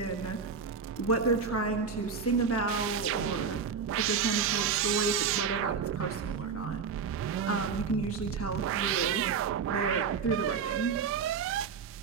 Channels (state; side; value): quieter; left; 5.9 dB